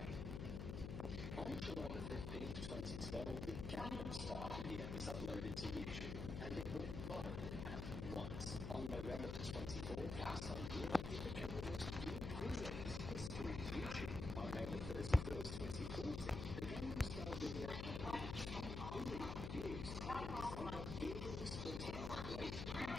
On July 15th, 2012, the Gangnam Style video was uploaded to YouTube, and it went viral at once. On November 24th, the same year, it became the most viewed video in the history of YouTube. On November 31st, 2014, the Gangnam Style video had 1 billion views, and over billions of later,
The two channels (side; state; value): left; noise; hum, 4 dB below the sound